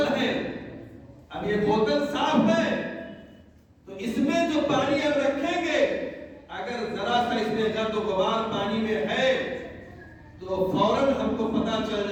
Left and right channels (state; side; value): identical; both; correlation 1.00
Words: ہے، اب یہ بوتل صاف ہے تو اس میں جو پانی ہم رکھیں گے، اگر ذرا سا اس میں گرد و غبار پانی میں ہے تو فوراً ہم کو پتا چل